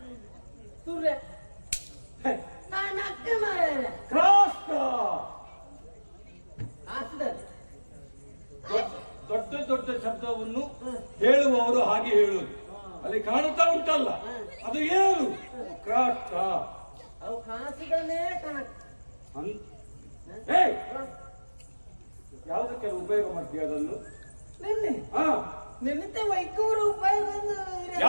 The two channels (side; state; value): both; inverted; correlation -1.00